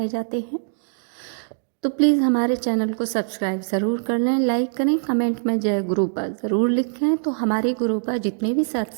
जाते हैं, तो प्लीज़ हमारे चैनल को सब्सक्राइब ज़रूर कर लें, लाइक करें, कमेंट में जय गुरुपा ज़रूर लिखें। तो हमारे गुरुपा जितने भी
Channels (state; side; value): silent; left; digital silence